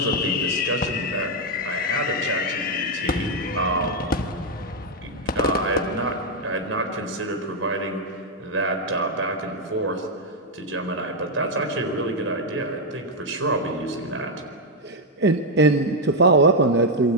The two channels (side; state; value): both; normal; correlation 0.00